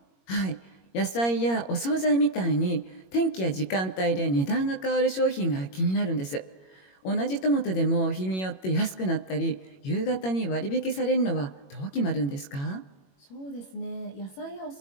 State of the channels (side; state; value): right; late; 21 ms